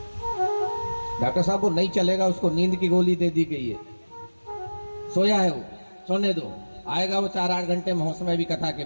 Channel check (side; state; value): both; inverted; correlation -1.00